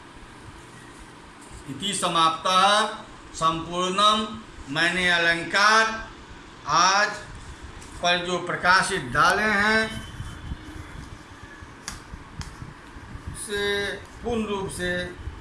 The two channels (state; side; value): identical; both; correlation 1.00